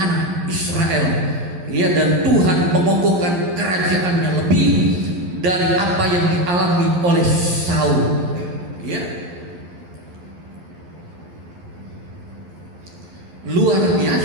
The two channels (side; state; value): left; late; 11 ms